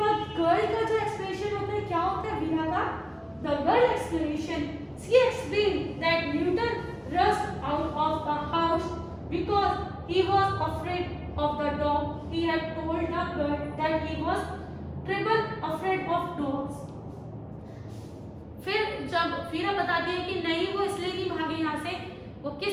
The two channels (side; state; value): both; identical; correlation 1.00